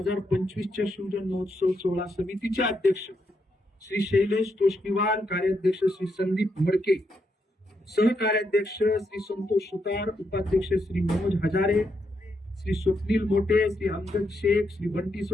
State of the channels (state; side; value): normal; both; correlation 0.80